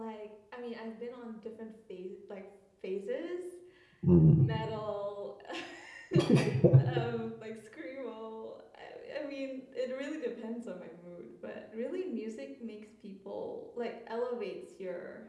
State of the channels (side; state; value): both; identical; correlation 1.00